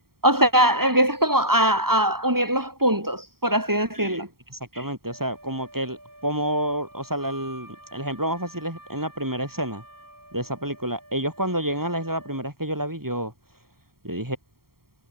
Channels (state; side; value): late; left; 0.93 ms